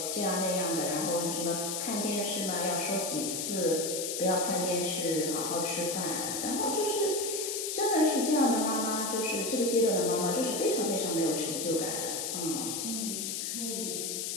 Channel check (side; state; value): left; noise; hiss, 2 dB below the sound